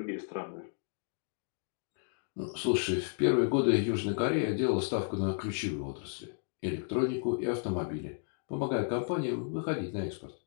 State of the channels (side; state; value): right; silent; 56 dB below the other